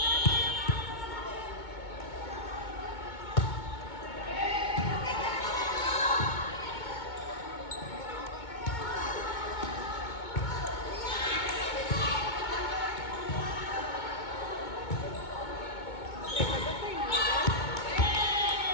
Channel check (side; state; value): right; late; 2.2 ms